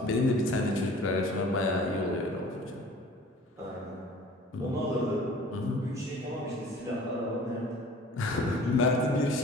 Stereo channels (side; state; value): both; normal; correlation 0.47